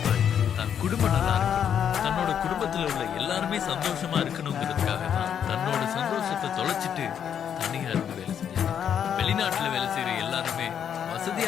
தன் குடும்பம் நல்லா இருக்கணும், தன்னோட குடும்பத்துல உள்ள எல்லாருமே சந்தோஷமா இருக்கணுங்கிறதுக்காக தான் தன்னோட சந்தோஷத்தை தொலைச்சிட்டு தனியா இருந்து வேலை செஞ்சாங்க. வெளிநாட்டுல வேலை செய்யற எல்லாருமே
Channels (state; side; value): quieter; right; 8.6 dB